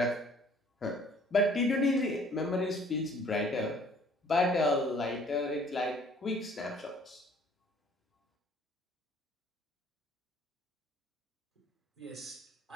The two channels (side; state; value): both; normal; correlation 0.56